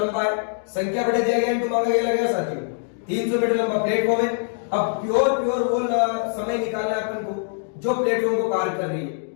है, संख्या बढ़े दिया गया इनटू मांगा गया लगेगा साथियों, 300 मीटर लंबा प्लेटफॉर्म है। अब प्योर वो समय निकालना है अपन को जो प्लेटफॉर्म को पार कर रही है।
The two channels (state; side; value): silent; right; digital silence